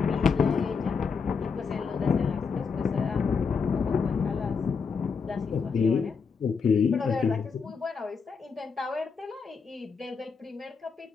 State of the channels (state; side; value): quieter; right; 5.5 dB